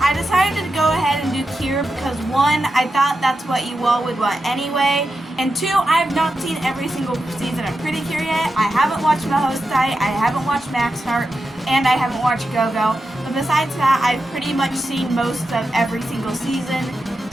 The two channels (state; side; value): normal; both; correlation 0.89